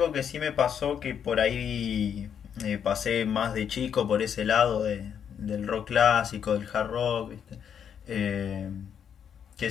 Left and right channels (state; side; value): quieter; right; 8.1 dB